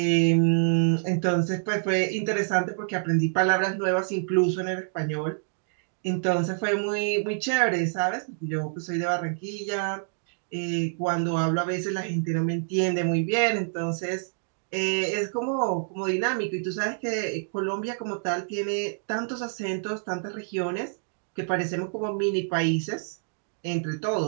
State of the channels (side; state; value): left; silent; digital silence